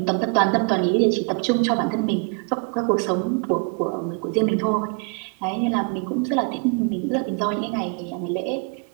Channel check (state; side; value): quieter; left; 33.9 dB